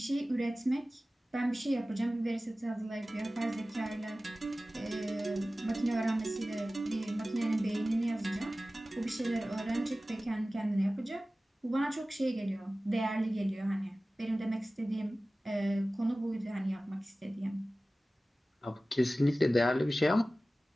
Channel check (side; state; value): both; normal; correlation 0.96